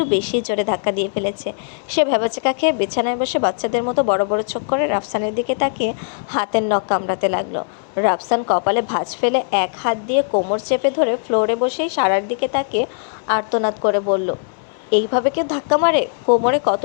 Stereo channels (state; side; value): silent; right; 66 dB below the other